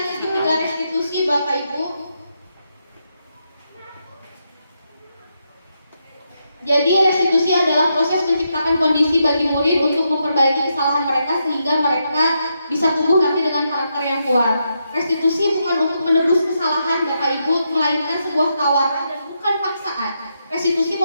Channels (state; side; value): inverted; both; correlation -0.82